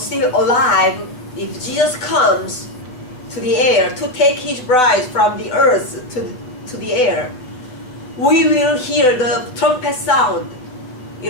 alive, if Jesus comes to the air to take his bride from the earth to the air, we will hear the trumpet sound.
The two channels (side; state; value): right; late; 7.9 ms